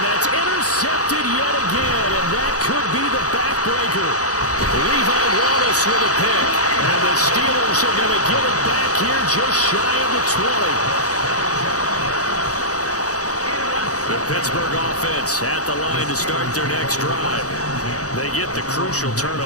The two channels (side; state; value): right; late; 0.66 ms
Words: that's intercepted yet again, and that could be the backbreaker. Levi Wallace with a pick, and the Steelers are going to get it back here just shy of the 20. The Pittsburgh offense at the line to start their next drive. They get the crucial